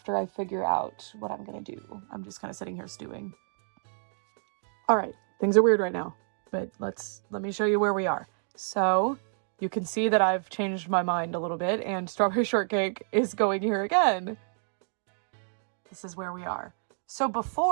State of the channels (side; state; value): left; silent; digital silence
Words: I figure out what I'm gonna do. I'm just kind of sitting here stewing. All right, things are weird right now, but let me show you where we are. So you can see that I've changed my mind a little bit, and Strawberry Shortcake is going here again. This is where we are. So